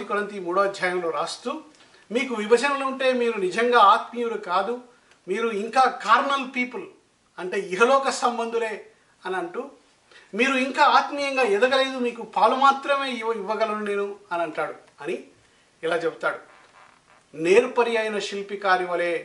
కొరింథీ 3వ అధ్యాయంలో రాస్తూ, మీకు విభజనలు ఉంటే మీరు నిజంగా ఆత్మీయులు కాదు, మీరు ఇంకా కార్నల్ పీపుల్ అంటే ఇహలోక సంబంధులే అని అంటూ, మీరు ఇంకా ఆత్మీయంగా ఎదగలేదు, మీకు పాలు మాత్రమే ఇవ్వగలను నేను అని అంటాడు అని ఇలా చెప్తాడు. నేర్పరి అయిన శిల్పికారి వలె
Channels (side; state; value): both; identical; correlation 1.00